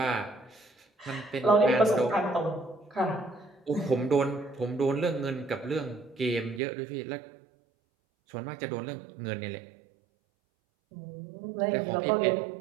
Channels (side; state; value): left; drops out; at 6.6 s